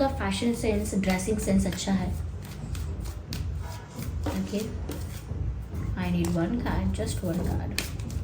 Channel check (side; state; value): both; identical; correlation 1.00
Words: फैशन सेंस, ड्रेसिंग सेंस अच्छा है। Okay, I need one card, just one card.